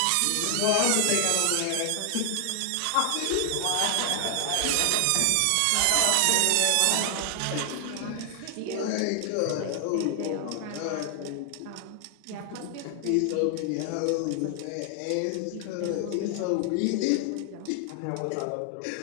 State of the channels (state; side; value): different; both; correlation 0.00